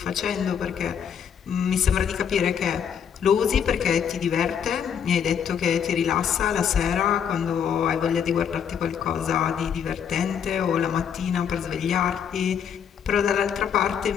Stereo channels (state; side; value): quieter; right; 7.9 dB